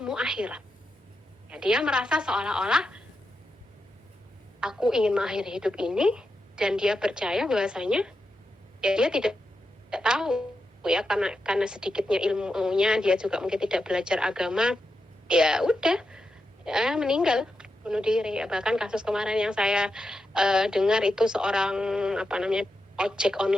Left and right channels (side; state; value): both; normal; correlation 0.88